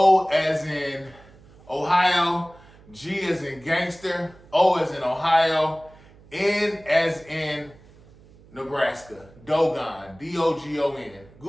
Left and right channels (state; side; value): noise; right; hum, 25 dB below the sound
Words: as in Ohio, G as in gangster, O as in Ohio, N as in Nebraska. Dogon, Dogon.